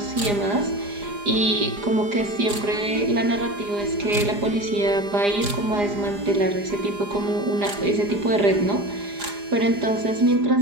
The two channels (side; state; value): left; late; 4.9 ms